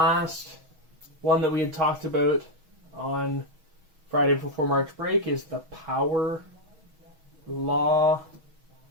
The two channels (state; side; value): late; left; 6.3 ms